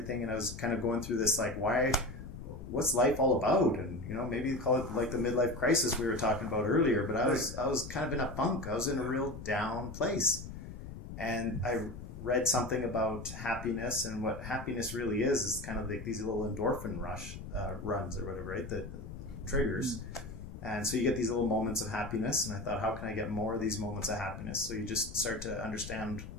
and I was kind of going through this, like, what's life all about? And, maybe you call it like the midlife crisis we were talking about earlier, but I was kind of in a funk. I was in a real down place. And I read something about happiness, and what happiness really is kind of like these little endorphin runs or whatever, right? That triggers. And so you get these little moments of happiness. And I thought, how can I get more of these moments of happiness? So you just start to understand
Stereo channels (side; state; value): left; noise; rumble, 11 dB below the sound